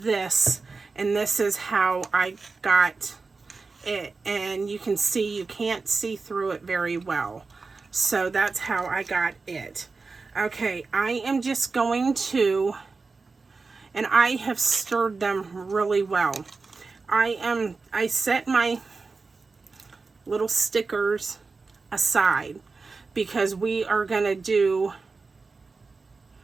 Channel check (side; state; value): left; quieter; 4.2 dB